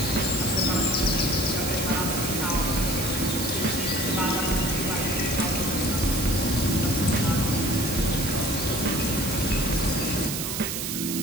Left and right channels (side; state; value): right; noise; hiss, 3 dB below the sound